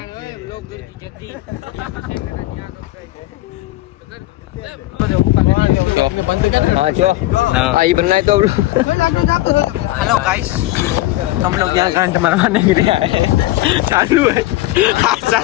हेलो गाइस, हम लोग यहाँ घंट मरवाने के लिए आए हैं. चालू है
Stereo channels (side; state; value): right; quieter; 17.2 dB